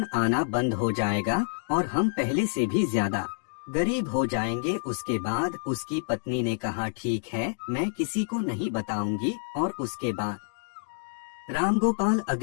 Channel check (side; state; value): right; silent; digital silence